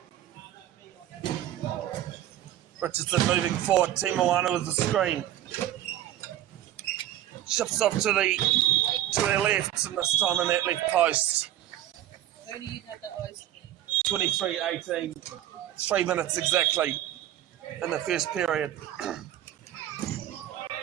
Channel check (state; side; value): quieter; left; 12.6 dB